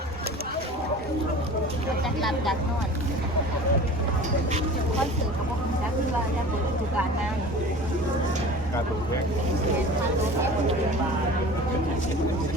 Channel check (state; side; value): normal; both; correlation 0.40